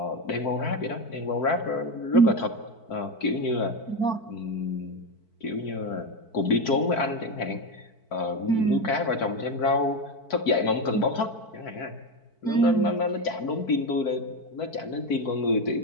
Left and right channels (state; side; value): late; right; 4.5 ms